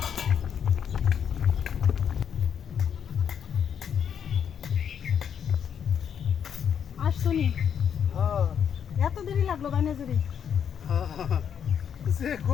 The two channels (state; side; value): quieter; right; 8.1 dB